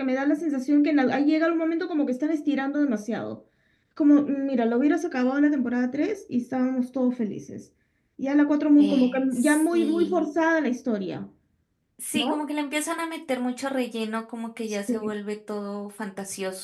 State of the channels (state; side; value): identical; both; correlation 1.00